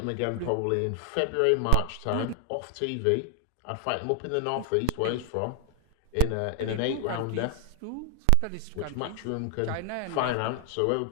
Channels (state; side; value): different; both; correlation 0.00